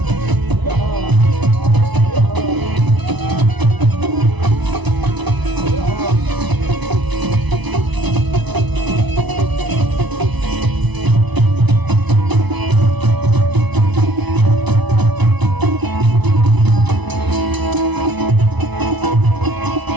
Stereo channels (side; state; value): left; late; 1.0 ms